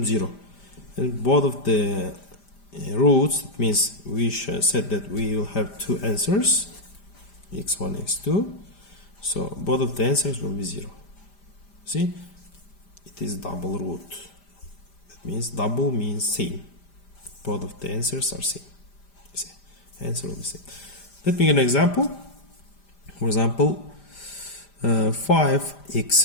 0. And both of the roots, that means we said that we will have two answers, x1, x2. So both of the answers will be 0. See, it is double root. Means double means same. both of the answers are same. See, answer will be same. Let me give an example. For example,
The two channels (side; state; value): right; late; 5.0 ms